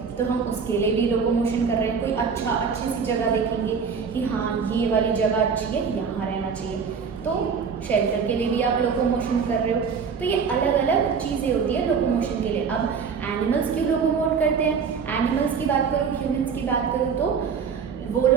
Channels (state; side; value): quieter; left; 6.1 dB